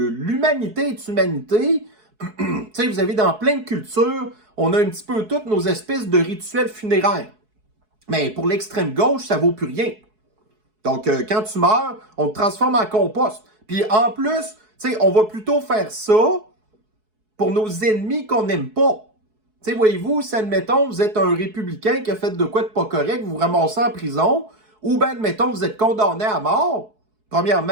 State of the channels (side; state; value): left; late; 4.7 ms